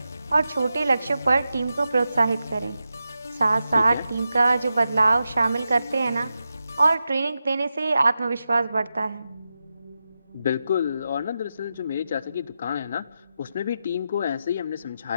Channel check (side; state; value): both; inverted; correlation -0.90